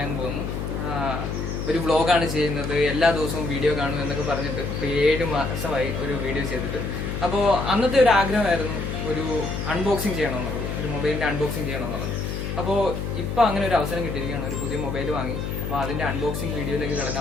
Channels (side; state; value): left; noise; hum, 4 dB below the sound